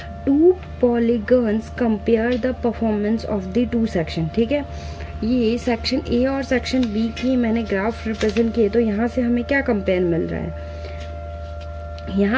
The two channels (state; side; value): identical; both; correlation 1.00